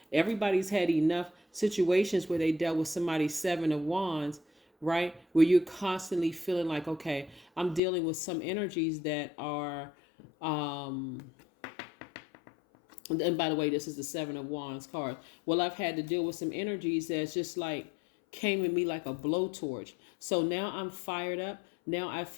everybody's had enough situations where they dealt with somebody's Seven of Wands, right? Where you're constantly feeling like, okay, I'm dealing with some energies that are, and by the way, this is the Seven of Wands card. Well, I've had to deal with some energies that's just like, came at me like a blowtorch. So now I'm fired up. Now I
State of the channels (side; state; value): right; drops out; at 7.8 s